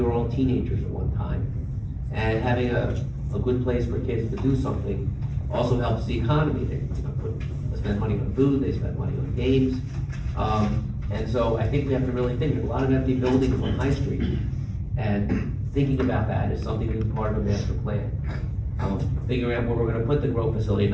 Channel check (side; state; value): both; identical; correlation 1.00